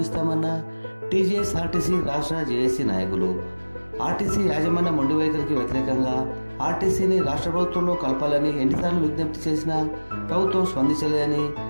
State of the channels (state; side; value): inverted; both; correlation -1.00